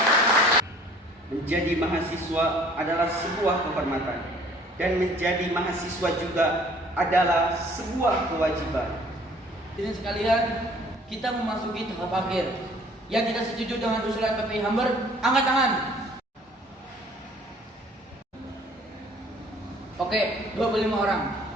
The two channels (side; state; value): both; normal; correlation 0.55